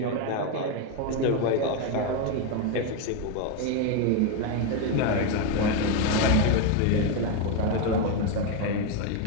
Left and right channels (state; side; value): different; both; correlation 0.02